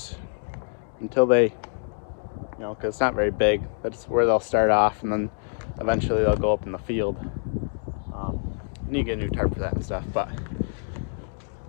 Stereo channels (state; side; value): silent; right; digital silence